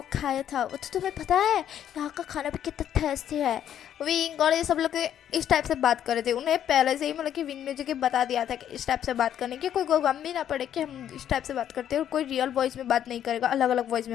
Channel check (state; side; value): quieter; right; 10.2 dB